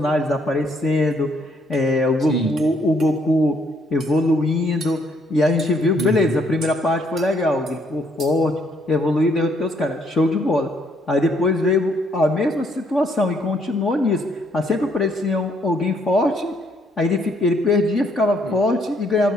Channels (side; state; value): both; normal; correlation 0.69